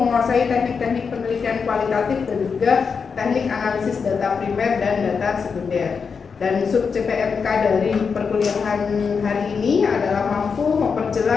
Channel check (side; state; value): right; quieter; 5.7 dB